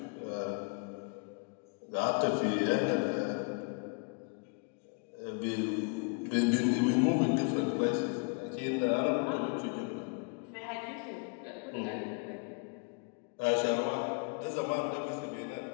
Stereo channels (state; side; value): quieter; right; 35.2 dB